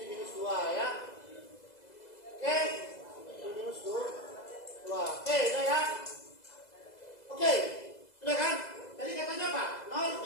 minus 2 ya. Oke. Ini minus 2. Oke, udah ya. Oke. Sudah kan? Tadi katanya apa?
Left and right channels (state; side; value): late; right; 2.0 ms